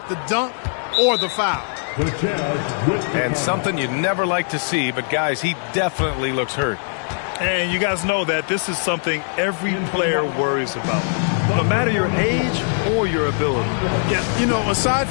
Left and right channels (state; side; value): silent; right; digital silence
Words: the dunk or the foul. And something you never like to see, but guys, he definitely looks hurt. And you guys know that this is something every player worries about, no matter your age or your ability. Yeah, you know, aside